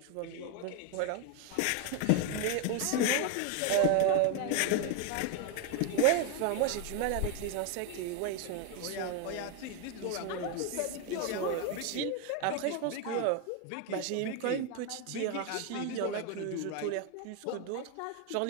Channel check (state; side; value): different; both; correlation 0.01